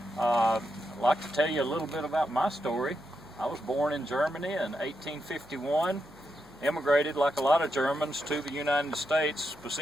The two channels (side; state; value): right; noise; hum, 27 dB below the sound